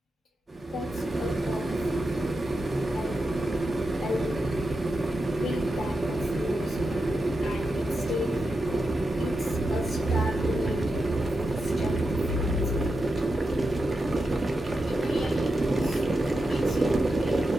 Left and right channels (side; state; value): both; normal; correlation 0.88